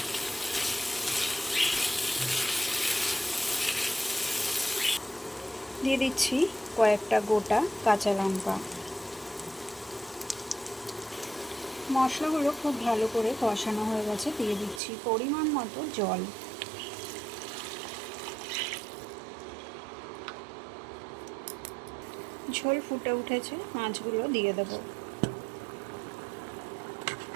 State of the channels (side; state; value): left; drops out; at 14.8 s